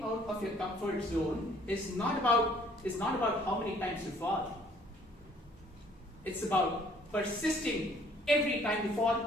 out of your comfort zone is not about how many times you fall. It's about persisting every time you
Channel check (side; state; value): both; normal; correlation 0.59